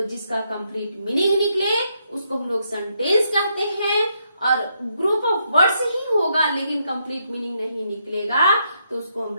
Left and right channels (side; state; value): both; inverted; correlation -0.77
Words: जिसका कंप्लीट मीनिंग निकले उसको हम लोग सेंटेंस कहते हैं, और ग्रुप ऑफ वर्ड्स ही होगा लेकिन कंप्लीट मीनिंग नहीं निकलेगा तो उसको हम